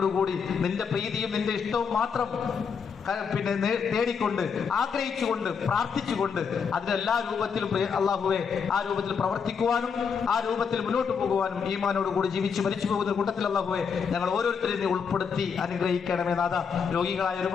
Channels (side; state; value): right; quieter; 6.2 dB